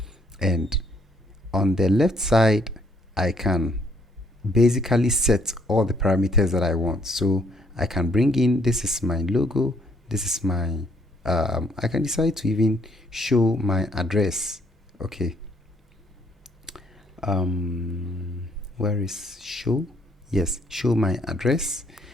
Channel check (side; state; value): both; normal; correlation 0.67